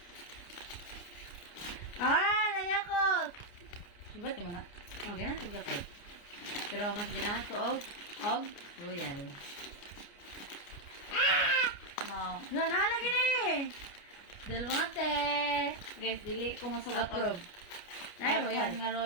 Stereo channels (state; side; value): late; right; 29 ms